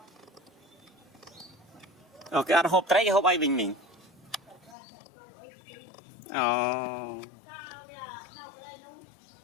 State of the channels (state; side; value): drops out; right; at 4.8 s